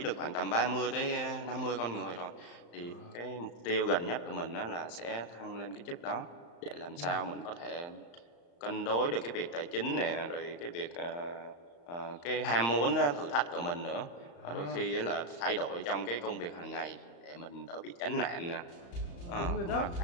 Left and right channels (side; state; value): right; late; 35 ms